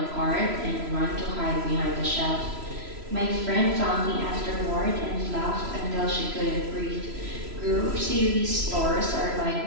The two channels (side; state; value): left; late; 3.0 ms